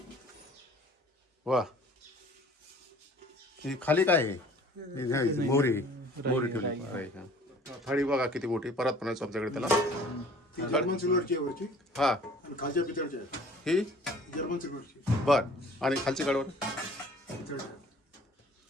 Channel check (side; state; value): both; normal; correlation 0.51